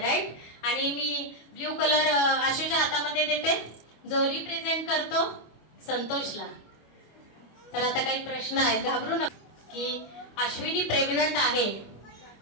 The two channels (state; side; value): late; right; 25 ms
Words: आणि मी ब्ल्यू कलर आशूच्या हातामध्ये देते. जो रिप्रेझेंट करतो संतोषला. तर आता काही प्रश्न आहे, घाबरू नका. की अश्विनी प्रेग्नंट आहे